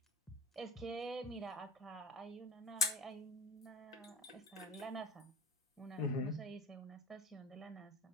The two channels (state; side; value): normal; both; correlation 0.36